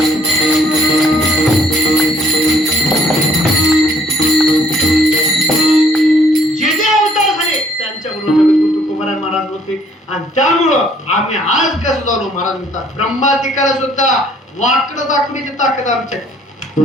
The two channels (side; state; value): both; normal; correlation 0.62